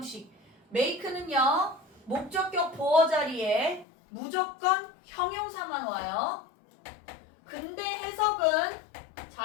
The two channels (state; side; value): drops out; right; at 3.9 s